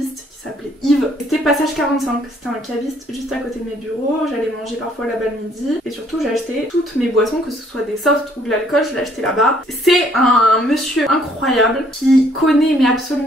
qui s'appelait Yves. C'était passage 45, c'était un caviste juste à côté de mes bureaux. J'allais manger parfois là-bas le midi. Et surtout, j'ai acheté toutes mes boissons, que ce soit des softs ou de l'alcool, je l'ai acheté là-bas. C'est un monsieur incroyable qui connaît mais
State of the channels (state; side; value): normal; both; correlation 0.63